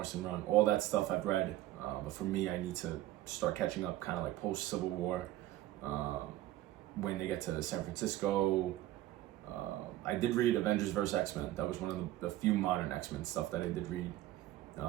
run, all that stuff I've read. But for me, I need to start catching up kind of like post Civil War, when they get to San Francisco. I did read Avengers vs. X-Men. That was one of the few modern X-Men stuff that I did read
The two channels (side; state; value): left; quieter; 15.1 dB